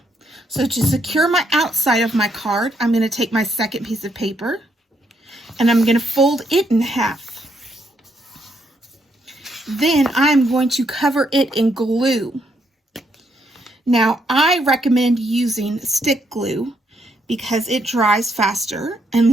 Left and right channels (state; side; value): normal; both; correlation 0.75